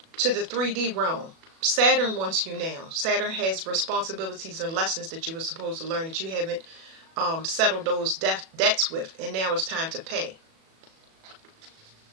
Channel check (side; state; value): left; late; 37 ms